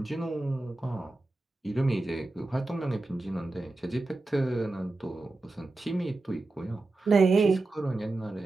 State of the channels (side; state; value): left; quieter; 3.0 dB